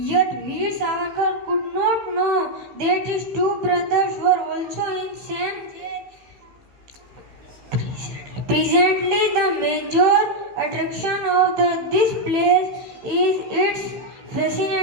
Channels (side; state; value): left; late; 15 ms